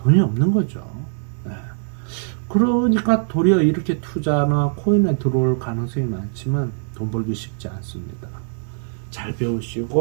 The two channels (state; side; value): silent; left; 65 dB below the other